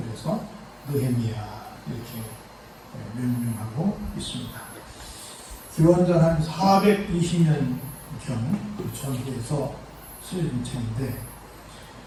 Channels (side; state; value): both; identical; correlation 1.00